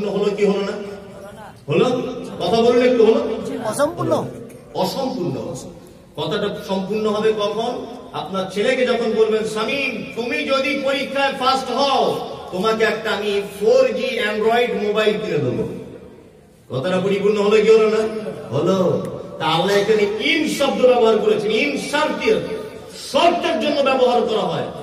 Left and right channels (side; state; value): both; identical; correlation 1.00